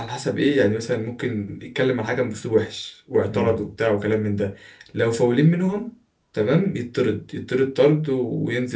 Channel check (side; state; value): both; identical; correlation 1.00